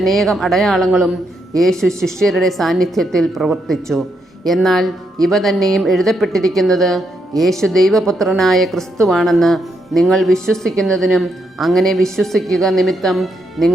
അടയാളങ്ങളും യേശു ശിഷ്യരുടെ സാന്നിധ്യത്തിൽ പ്രവർത്തിച്ചു. എന്നാൽ ഇവ തന്നെയും എഴുതപ്പെട്ടിരിക്കുന്നത് യേശു ദൈവപുത്രനായ ക്രിസ്തുവാണെന്ന് നിങ്ങൾ വിശ്വസിക്കുന്നതിനും അങ്ങനെ വിശ്വസിക്കുക നിമിത്തം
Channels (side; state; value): both; normal; correlation 0.79